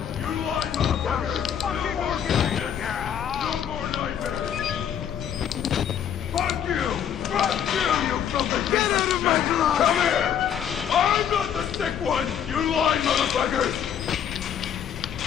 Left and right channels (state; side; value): quieter; right; 8.9 dB